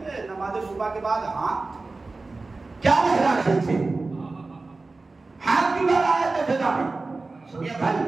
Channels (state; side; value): quieter; left; 3.5 dB